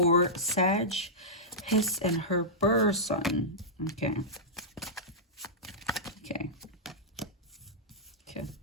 Sag, his and her person? Okay.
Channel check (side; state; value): both; normal; correlation -0.13